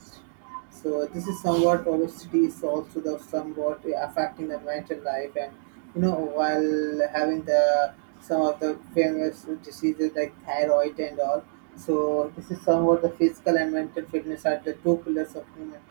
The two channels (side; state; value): left; silent; digital silence